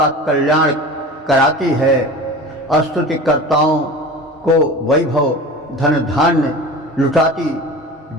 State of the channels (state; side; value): normal; both; correlation 0.35